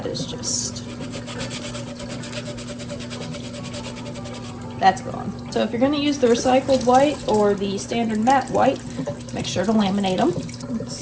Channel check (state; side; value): identical; both; correlation 1.00